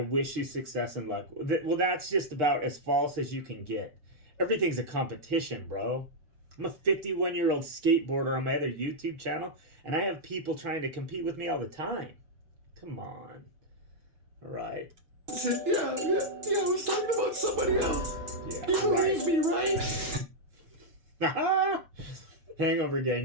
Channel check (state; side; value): late; left; 6.3 ms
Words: you success and luck. Well, that's just about as false as you can get. Everything's a competition, bro. I'm a 51-year-old skateboarder on my other YouTube channel, and I have people trying to compete with me all the time. Come on. All right. Yeah, I was talking about somebody else. Yeah, you believe me, right? Hangover